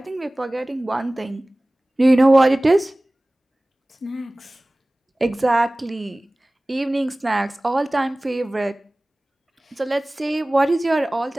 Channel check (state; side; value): normal; both; correlation 0.98